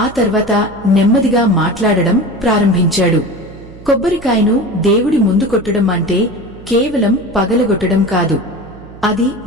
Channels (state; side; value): noise; right; hum, 19 dB below the sound